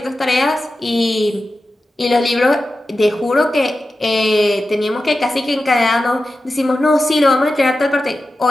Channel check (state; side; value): normal; both; correlation 0.93